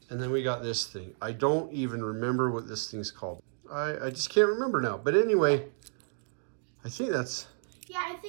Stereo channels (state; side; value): silent; left; digital silence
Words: and then we got this thing. I don't even remember what this thing's called. I just can't remember now. But anyway, I think that's... Yeah, I